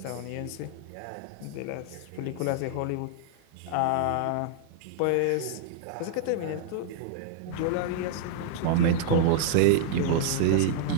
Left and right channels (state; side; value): different; both; correlation -0.01